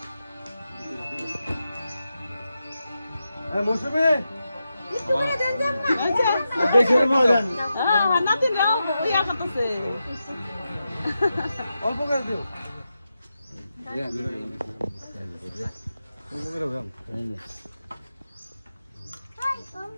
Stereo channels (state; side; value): inverted; both; correlation -0.89